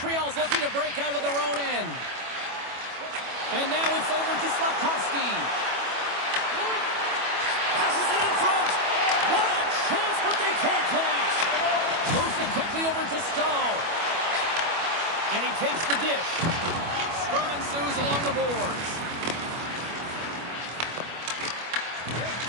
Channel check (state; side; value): late; left; 25 ms